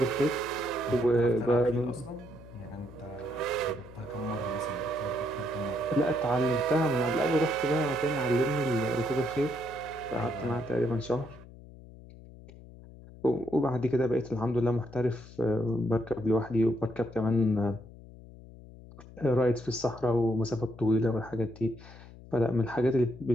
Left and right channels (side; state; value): left; noise; hum, 19 dB below the sound